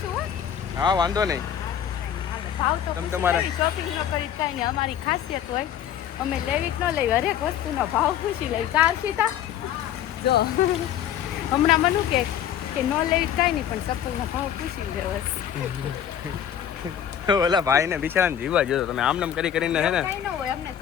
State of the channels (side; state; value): right; quieter; 9.8 dB